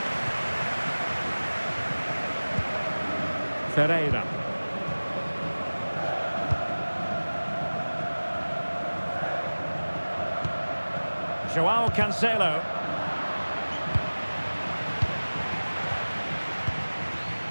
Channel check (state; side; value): inverted; both; correlation -1.00